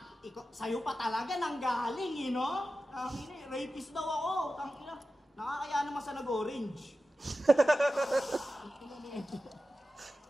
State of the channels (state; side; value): normal; both; correlation 0.93